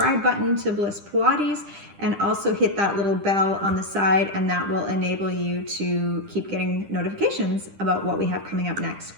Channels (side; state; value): left; late; 10 ms